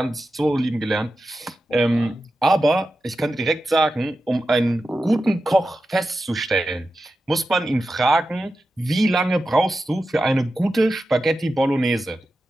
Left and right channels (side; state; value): both; normal; correlation 0.91